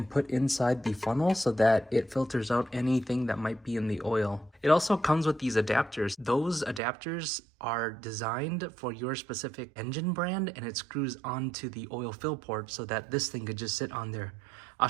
put inside the funnel so that it filters out anything that might be in the oil. It also comes with these adapters. Those adapters are designed for your specific engine brand, and it screws onto the oil fill port so that this thing could just sit on there. I'll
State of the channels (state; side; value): drops out; left; at 6.8 s